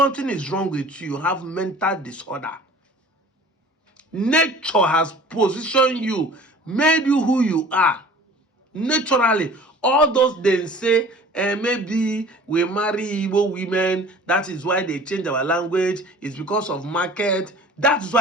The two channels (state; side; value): normal; both; correlation 0.45